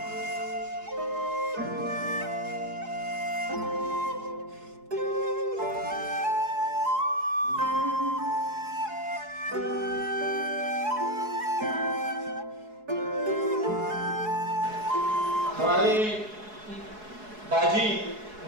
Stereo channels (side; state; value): left; late; 4.7 ms